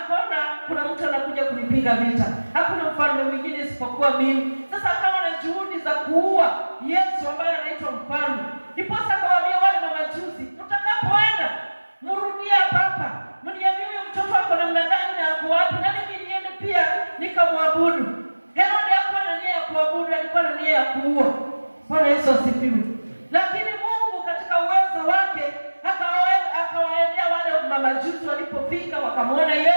kuna mtu anakuja kunipiga kunipiga vita, hakuna mfalme mwingine isipokuwa mimi. Sasa akawa na juhudi za kuua Yesu ambaye anaitwa mfalme. Ndipo akawaambia wale mamajusi, mtakapoenda mrudie hapa, mniambie huyo mtoto wako namna gani na ako wapi, na mimi niende pia nikamwabudu. Herode hakuwa na nia ya kuabudu, alikuwa na nia ya kuua. Bwana Yesu asifiwe. Lakini Mungu katika uwezo wake akawaendea wale mamajusi. Walipofika wakamwona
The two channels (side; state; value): both; inverted; correlation -1.00